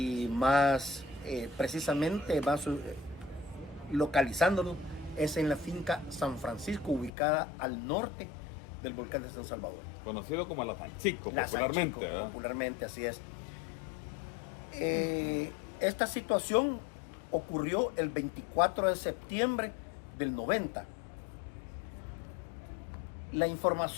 más precisamente, más localizándolo, es en la finca San Francisco, ubicada al norte del volcán de San Salvador. Conocido como la Sanchico, La Sanchico, popularmente, así es. Esta situación ocurrió el 24 de septiembre del 90. La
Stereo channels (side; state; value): right; drops out; at 7.1 s